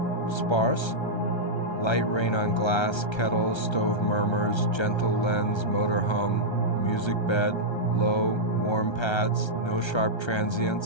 Sparse. Light rain on glass, kettle, stove murmurs, gentle lens, motor hum, music bed, low, warm pads, no sharp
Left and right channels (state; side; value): late; right; 1.3 ms